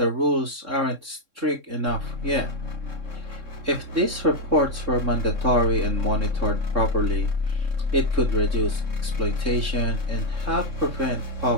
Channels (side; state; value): left; late; 3.6 ms